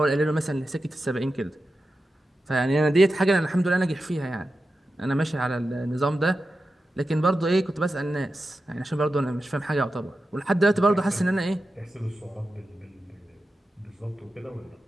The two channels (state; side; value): normal; both; correlation 0.91